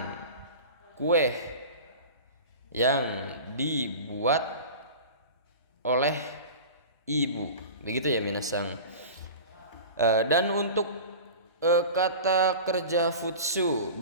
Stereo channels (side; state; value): both; inverted; correlation -0.34